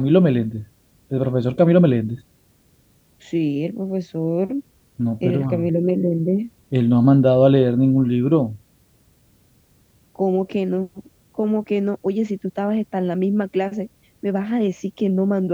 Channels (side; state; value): both; identical; correlation 1.00